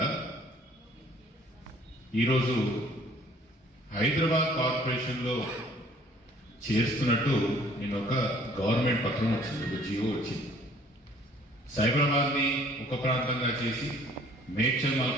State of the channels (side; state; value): both; normal; correlation 0.56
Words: ఈరోజు హైదరాబాద్ కార్పొరేషన్లో చేస్తున్నట్టు నేను ఒక గవర్నమెంట్ పత్రం వచ్చింది, ఒక జియో వచ్చింది. సైబరాబాద్ని ఒక ప్రాంతంగా చేసి, మేడ్చల్